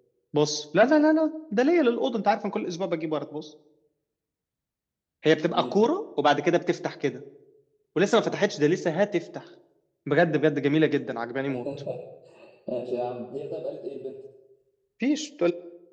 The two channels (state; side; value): identical; both; correlation 1.00